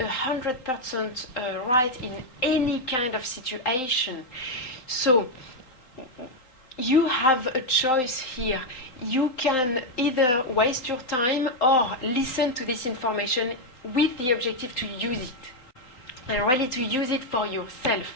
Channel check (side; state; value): right; late; 3.9 ms